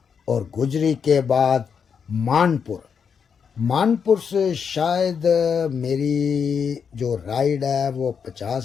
और गुजरी के बाद मानपुर से शायद मेरी जो राइड है वो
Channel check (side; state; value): right; quieter; 6.7 dB